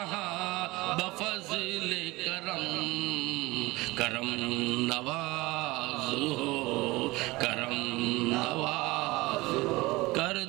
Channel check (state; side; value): quieter; left; 21.2 dB